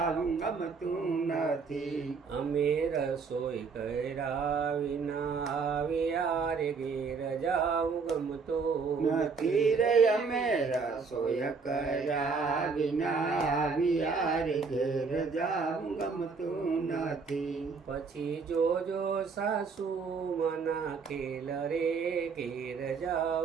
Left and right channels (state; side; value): quieter; left; 5.0 dB